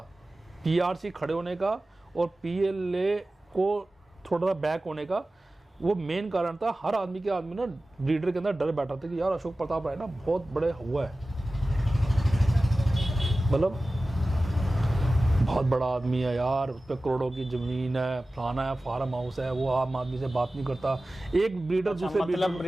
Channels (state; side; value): normal; both; correlation 0.96